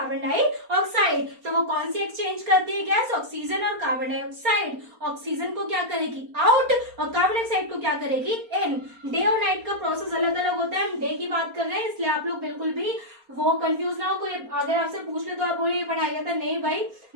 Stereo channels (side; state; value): left; late; 4.3 ms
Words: डाइऑक्साइड। तो वो कौन सी एक्सचेंज करती है गैस, ऑक्सीजन और कार्बन डाइऑक्साइड। ऑक्सीजन को क्या करेगी, आउट, और कार्बन डाइऑक्साइड को क्या करेगी, इन। डे और नाइट का प्रोसेस अलग अलग होता है, हम डे की बात कर रहे हैं, इसलिए आप लोग बिल्कुल भी वो कंफ्यूज ना हो। कोई अगर आपसे पूछ ले तो आप बोलिए पढ़ाई जाता, नहीं भाई,